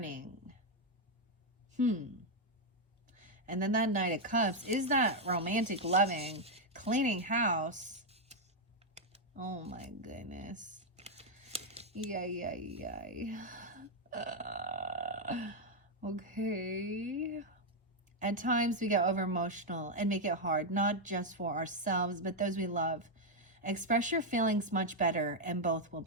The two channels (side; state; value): both; normal; correlation 0.00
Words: And then that Knight of Cups is that romantic loving, cleaning house. Oh my goodness. Yay. Okay. At times we get over emotional and make it hard, not just for ourselves, but those we love. Express your feelings much better and both will